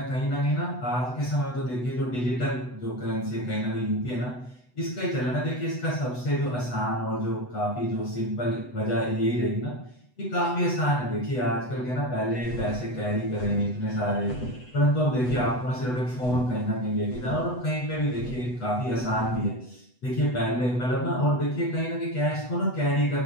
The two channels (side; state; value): right; late; 8.0 ms